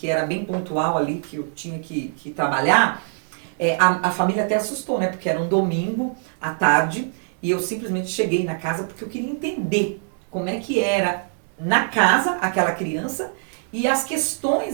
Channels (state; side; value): silent; left; 63 dB below the other